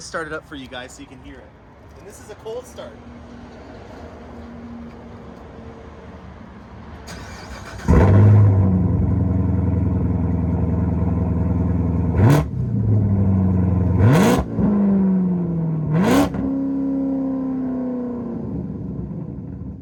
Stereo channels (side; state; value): both; identical; correlation 1.00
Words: it up for you guys so you can hear it. And this is a cold start.